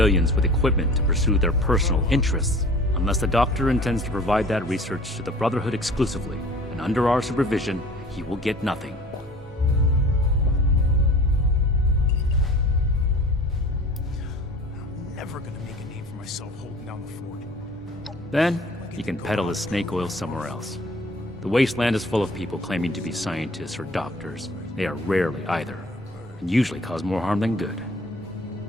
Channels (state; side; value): normal; both; correlation 0.45